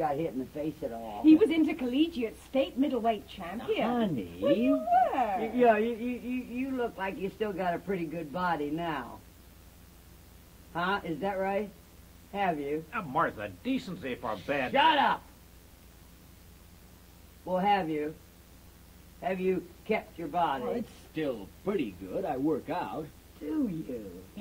hit in the face at all. He was intercollegiate state middleweight champion. Honey. Well, you were. Yeah, you look like you still got a pretty good body now. Huh? Is that right? Have you? Now, Martha, decency for bed. Shut up! Well, have you? Have you kept your body? Well, it's still pretty good. I work out. Do you?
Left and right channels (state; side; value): identical; both; correlation 1.00